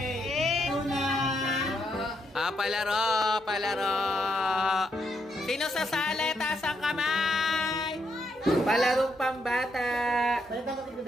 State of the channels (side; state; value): both; normal; correlation 0.78